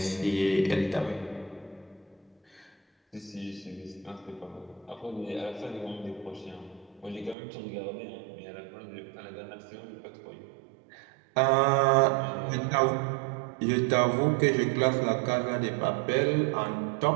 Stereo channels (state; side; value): drops out; left; at 7.4 s